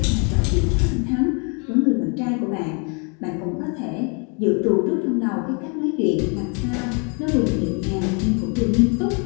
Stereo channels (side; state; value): right; quieter; 35.8 dB